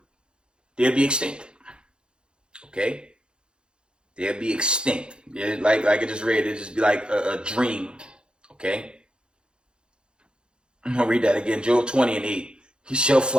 they'll be extinct. Okay? They'll be extinct. Like I just read, it'll just be like a dream. Okay? I'm going to read that again. Job 20 and 8. He shall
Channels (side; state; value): left; late; 0.051 ms